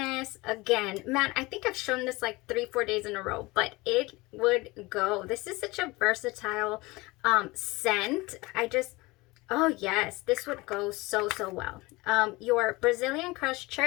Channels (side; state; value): right; quieter; 22.5 dB